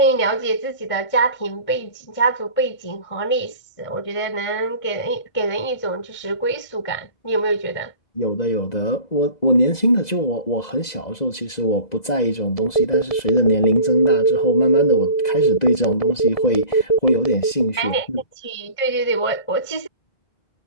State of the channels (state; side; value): late; right; 2.0 ms